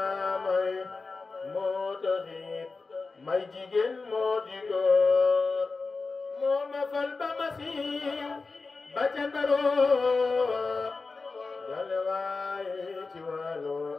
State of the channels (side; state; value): right; quieter; 4.0 dB